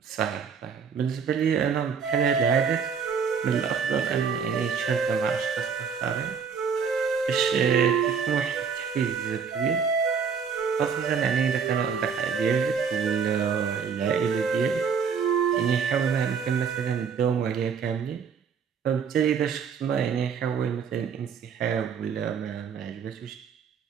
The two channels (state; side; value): quieter; left; 6.4 dB